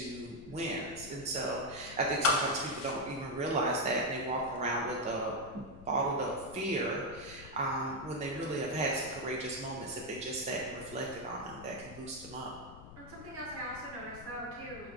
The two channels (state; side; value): noise; left; rumble, 15 dB below the sound